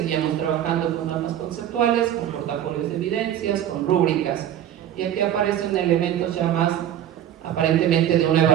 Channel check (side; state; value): left; quieter; 11.0 dB